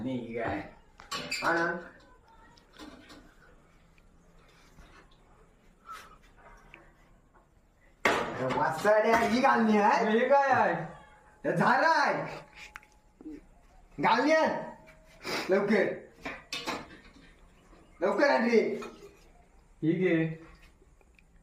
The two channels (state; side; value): identical; both; correlation 1.00